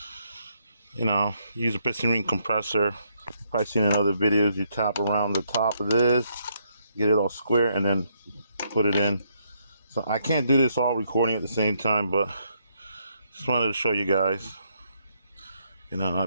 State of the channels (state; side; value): inverted; both; correlation -0.74